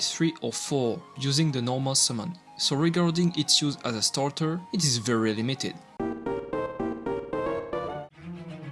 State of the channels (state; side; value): identical; both; correlation 1.00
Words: 3 or 4 using the normal summon. So regarding its use as a starter, it is very limited.